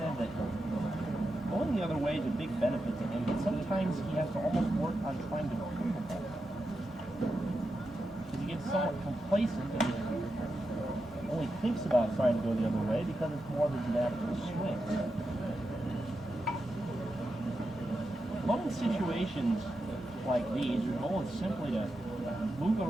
that going the other way is a big benefit to him, but sometimes he has to almost work on trying to improve the ball. Because he gets somewhat complacent and only thinks about trying to go the other way because it's more than an natural swing. But in situations like these, your goal is simply to move the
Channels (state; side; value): normal; both; correlation 0.88